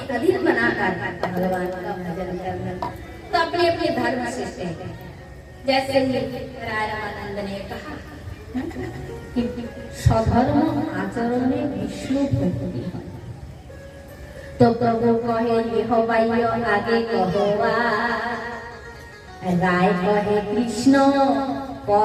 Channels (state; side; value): identical; both; correlation 1.00